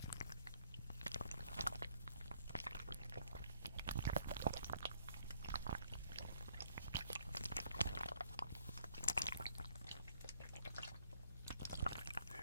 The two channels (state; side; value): inverted; both; correlation -0.66